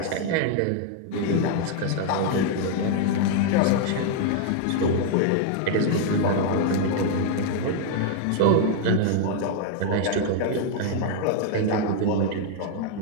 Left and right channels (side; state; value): both; different; correlation 0.00